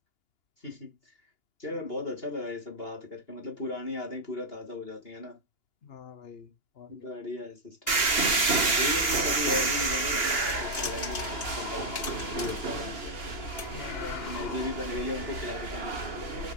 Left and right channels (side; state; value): right; late; 2.8 ms